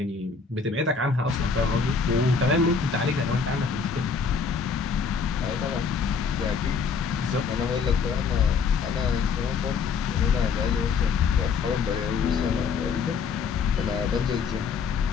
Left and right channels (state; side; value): quieter; right; 5.5 dB